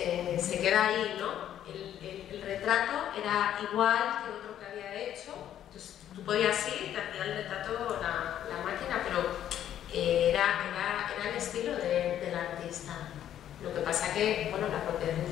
se queda ahí, ¿no? El retrato era igual que otro que había hecho. Entonces tú podías ir, te hacía el retrato la máquina, pero era el estilo del artista. Lo que pasa que, bueno, la propiedad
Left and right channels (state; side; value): quieter; right; 10.9 dB